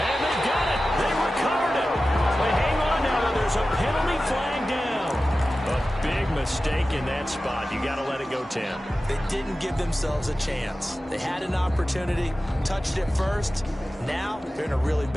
they got it. They recovered it. But hang on now. There's a penalty flag down. A big mistake in that spot. You got to let it go 10. They didn't give themselves a chance. They had an opportunity, touched it first. Now they're in a really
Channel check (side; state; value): both; normal; correlation 0.95